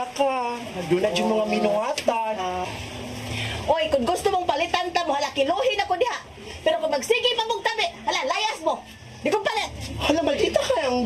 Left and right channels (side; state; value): both; identical; correlation 1.00